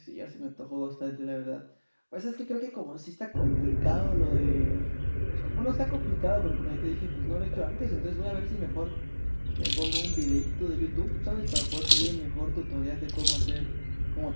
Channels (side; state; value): both; inverted; correlation -1.00